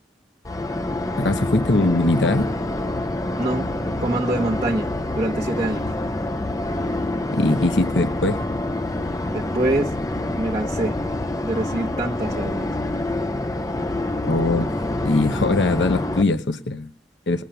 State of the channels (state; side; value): normal; both; correlation 0.70